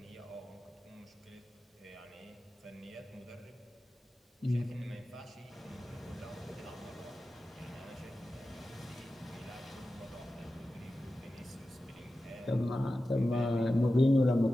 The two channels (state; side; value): normal; both; correlation 0.93